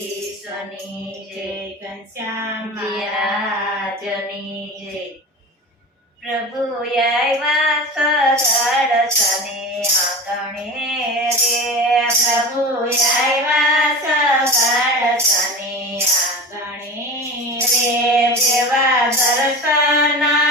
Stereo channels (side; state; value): both; normal; correlation 0.30